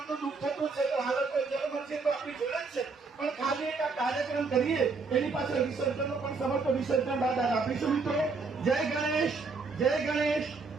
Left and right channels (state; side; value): quieter; left; 4.3 dB